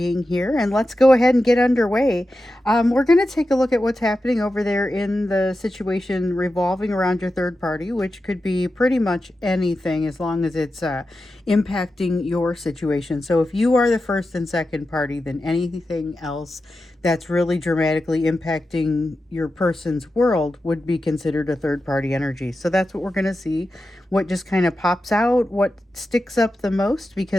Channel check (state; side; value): normal; both; correlation 0.91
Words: here. And let's go ahead and get underway. We're going to take a look at what's happening over there in the situation revolving around your third party, which could be pretty much anything as long as it's impacting your situation. So if you are the first and second party, then anything else that's really dramatically impacting your person's world would be considered a third party energy. So that's what we're going to see. What just kind of pops out, what sticks up the most,